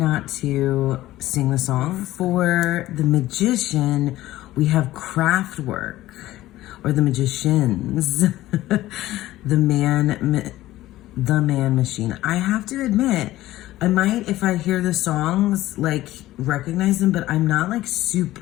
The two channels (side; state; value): right; quieter; 15.8 dB